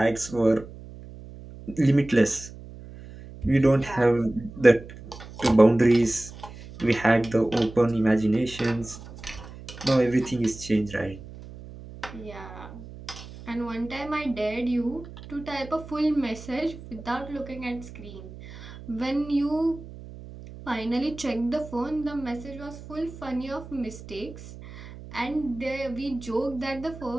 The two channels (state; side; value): noise; right; hum, 15 dB below the sound